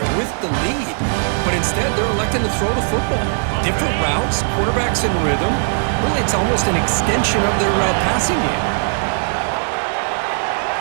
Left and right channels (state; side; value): silent; left; digital silence